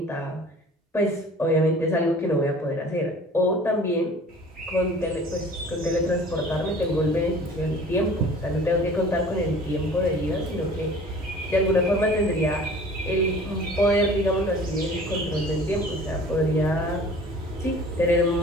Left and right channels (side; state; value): both; normal; correlation 0.46